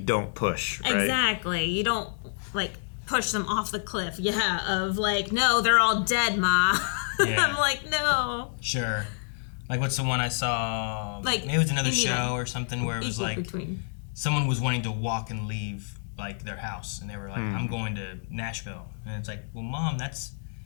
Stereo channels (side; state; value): right; silent; digital silence